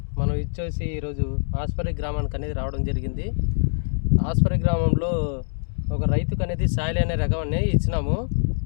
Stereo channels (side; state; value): right; silent; 63 dB below the other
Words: మనం వచ్చేసి ఈరోజు ఆస్పరి గ్రామానికి అనేది రావడం జరిగింది. ఆస్పరి గ్రామంలో ఒక రైతుకు అనేది సాయిల్ అనే రకం అనేది ఇచ్చినాము.